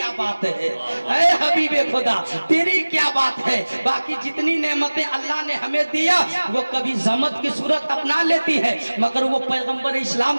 बात है, ऐ हबीबे खुदा तेरी क्या बात है। बाकी जितनी नेमतें अल्लाह ने हमें दिया वो कभी ज़हमत की सूरत अपना लेती है, मगर वो पैगंबर इस्लाम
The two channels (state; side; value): inverted; both; correlation -1.00